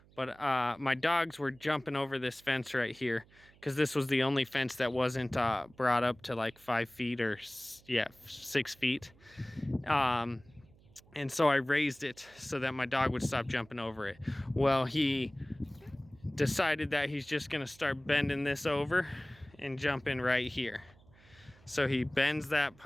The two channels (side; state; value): right; noise; hum, 27 dB below the sound